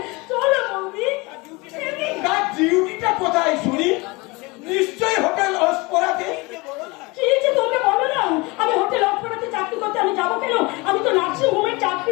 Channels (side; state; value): right; quieter; 25.1 dB